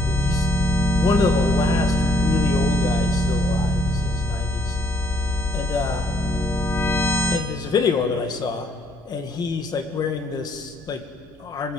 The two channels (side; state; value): both; normal; correlation 0.66